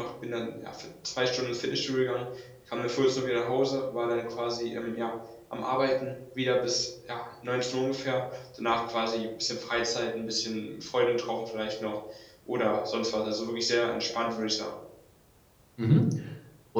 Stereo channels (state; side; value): identical; both; correlation 1.00